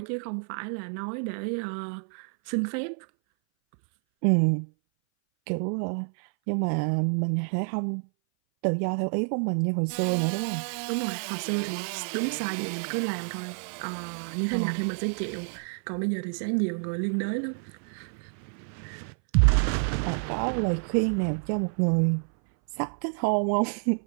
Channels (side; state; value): left; silent; 58 dB below the other